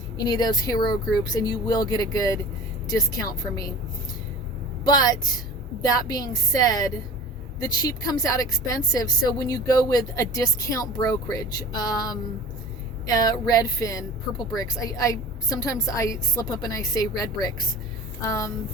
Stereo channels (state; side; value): normal; both; correlation 0.38